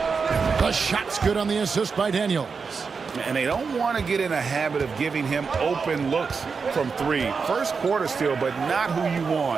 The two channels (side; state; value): left; quieter; 5.2 dB